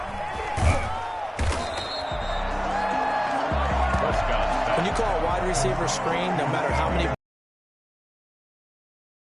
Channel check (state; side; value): identical; both; correlation 1.00